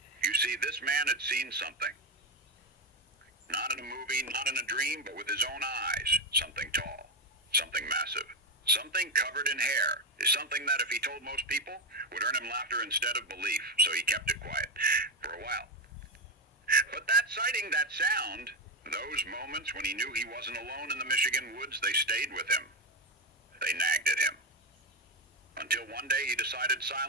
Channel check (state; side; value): normal; both; correlation 0.11